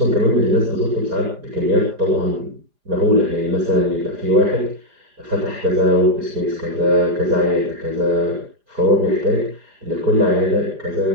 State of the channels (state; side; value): late; left; 4.9 ms